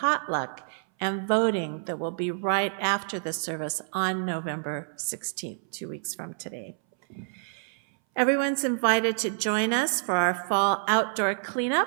and voting that will be right after the service on November 16th, 2 weeks from today. Everyone's invited to join us for our fall outdoor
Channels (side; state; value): left; silent; 59 dB below the other